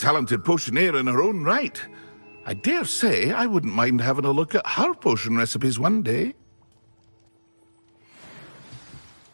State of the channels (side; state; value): both; inverted; correlation -1.00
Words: potioneer in her own right. I dare say I wouldn't mind having a look at her potion recipes one day.